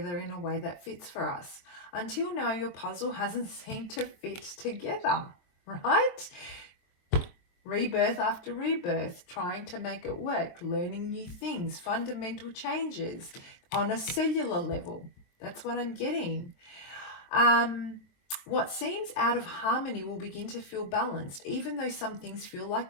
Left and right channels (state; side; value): late; right; 22 ms